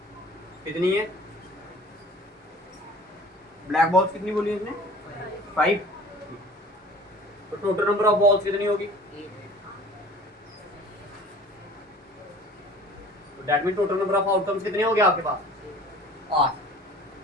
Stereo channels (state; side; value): normal; both; correlation 0.46